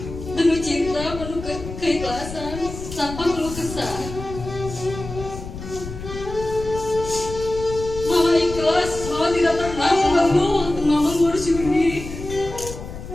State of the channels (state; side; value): noise; left; rumble, 10 dB below the sound